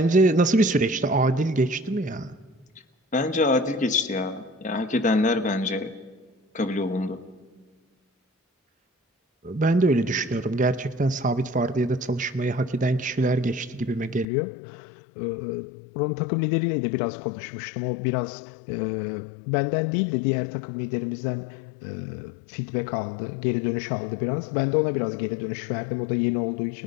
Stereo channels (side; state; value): right; drops out; at 14.2 s